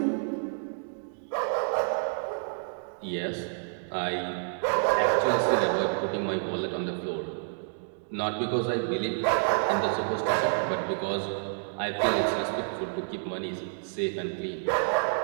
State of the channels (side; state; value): left; silent; digital silence